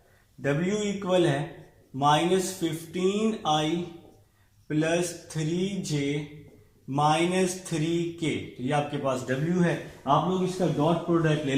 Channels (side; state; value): both; identical; correlation 1.00